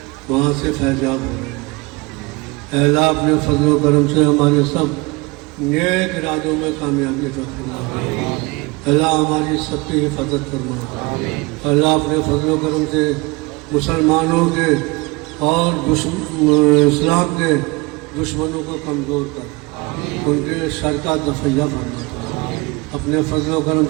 वहाँ से फैजाब हो रहे हैं। अल्लाह अपने फजल करम से हमारे सब नेक इरादों में कामयाबी अता फरमा। अल्लाह हमारी सबकी हिफाजत फरमा। अल्लाह अपने फजल करम से मुसलमानों के और इस्लाम के दुश्मनों को कमज़ोर कर उनके शर का दफ़ैया फरमा। अपने फजल करम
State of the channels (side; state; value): left; quieter; 24.9 dB